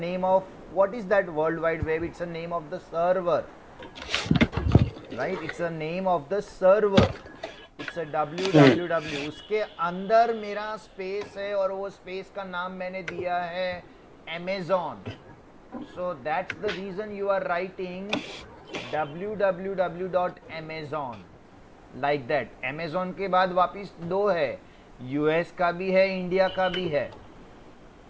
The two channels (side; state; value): both; identical; correlation 1.00